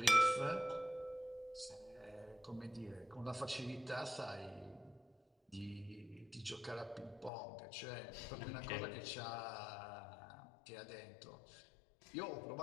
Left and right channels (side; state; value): right; drops out; at 7.3 s